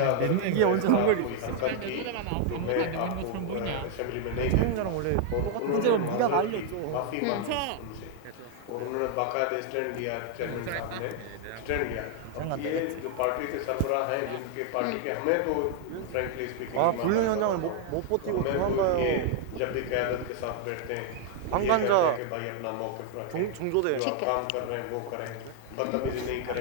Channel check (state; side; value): different; both; correlation 0.00